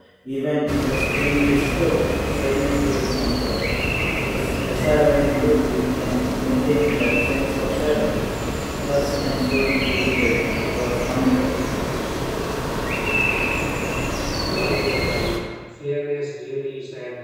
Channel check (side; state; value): both; identical; correlation 1.00